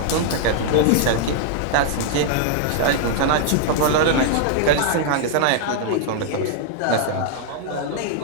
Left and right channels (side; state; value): both; different; correlation -0.01